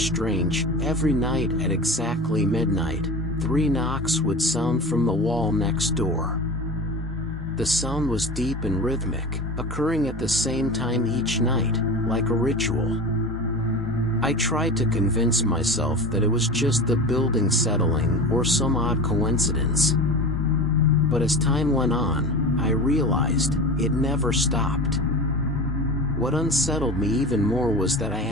Every night at exactly midnight, 3 knocks would sound from the wall next door. The sound was deep and rhythmic, occurring at the same time each night, like a ritual. I tried to convince myself that it was just the building settling or some odd coincidence. But as time went on, I realized it never stopped. What unsettled me even more was that I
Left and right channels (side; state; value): both; normal; correlation 0.30